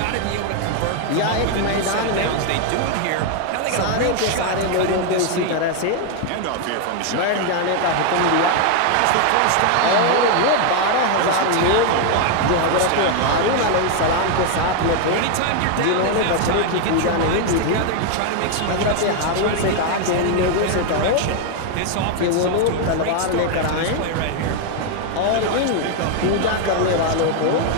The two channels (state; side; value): different; both; correlation 0.01